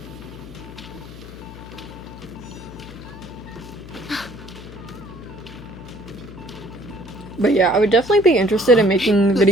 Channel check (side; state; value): left; noise; hum, 15 dB below the sound